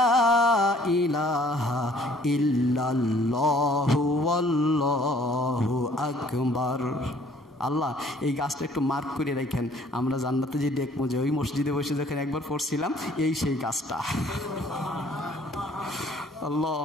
ইলাহা ইল্লাল্লাহু ওয়াল্লাহু আকবার। আল্লাহ এই গাছটা একটু মার্ক করে রাখেন, আমরা জান্নাতে যে দেখবো যে ওই মসজিদে বসে যখন একবার পড়ছিলাম এই সেই গাছটা। আল্লাহ,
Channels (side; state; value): both; normal; correlation 0.58